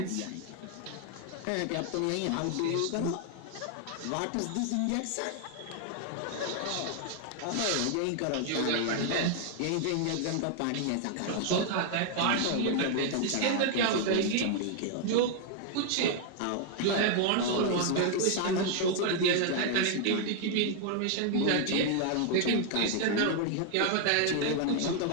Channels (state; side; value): different; both; correlation 0.00